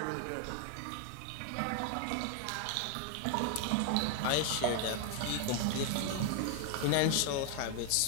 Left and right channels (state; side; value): different; both; correlation 0.01